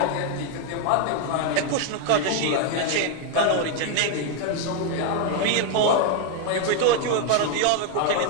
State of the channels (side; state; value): both; different; correlation 0.01